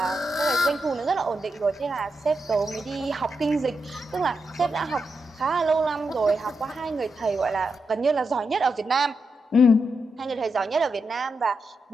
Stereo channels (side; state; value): both; normal; correlation 0.85